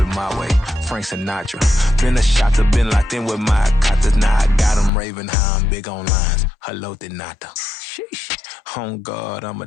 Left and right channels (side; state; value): right; drops out; at 4.9 s